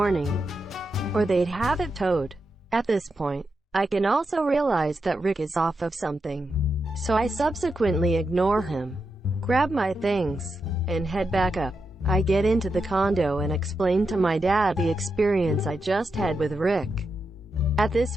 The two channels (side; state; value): both; normal; correlation 0.86